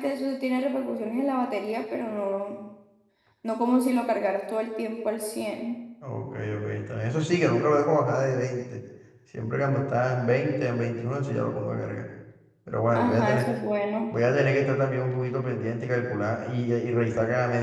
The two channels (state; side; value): identical; both; correlation 1.00